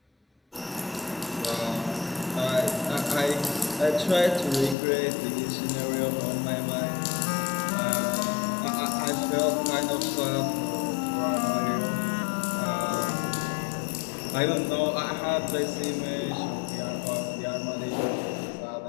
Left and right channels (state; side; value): drops out; right; at 4.8 s